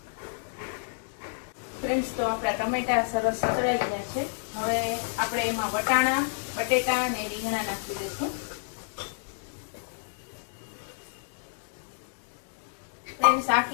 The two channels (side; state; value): right; silent; 58 dB below the other